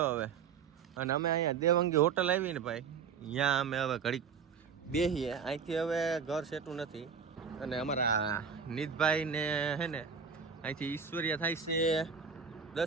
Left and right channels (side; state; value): left; quieter; 6.4 dB